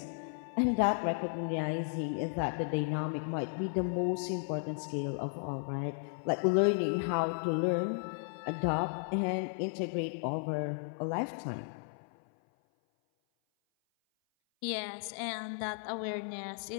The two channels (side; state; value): right; silent; 55 dB below the other